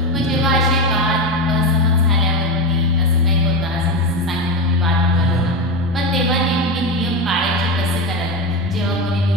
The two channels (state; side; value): normal; both; correlation 0.17